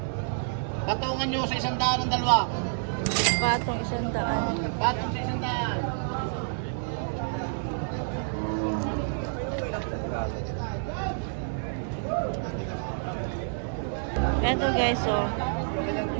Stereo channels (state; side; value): silent; left; digital silence